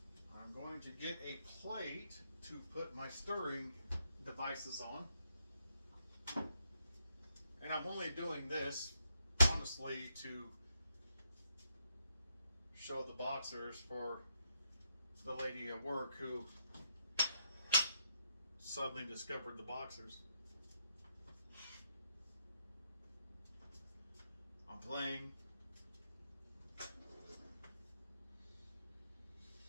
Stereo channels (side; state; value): both; inverted; correlation -0.78